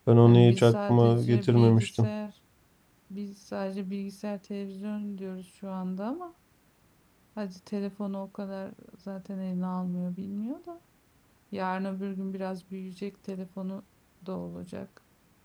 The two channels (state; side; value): identical; both; correlation 1.00